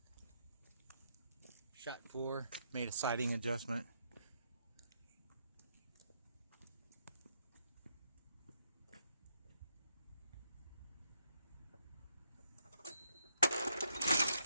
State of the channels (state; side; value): inverted; both; correlation -0.75